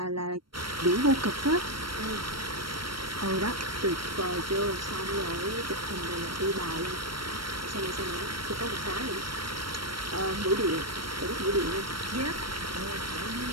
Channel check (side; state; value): left; late; 0.73 ms